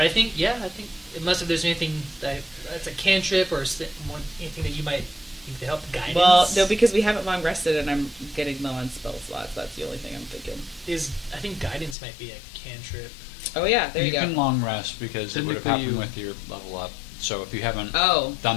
I think, unless if there's anything that's a cantrip or anything that you might think to help guidance. well, no, because we haven't long rested and I'm getting low on spell slots. That's the only thing I'm thinking. I think guidance might be a cantrip. Oh yeah, there you, You go. can long rest because it would have Technically happened you- with your level up. So if you haven't Oh,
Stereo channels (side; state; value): right; drops out; at 12.0 s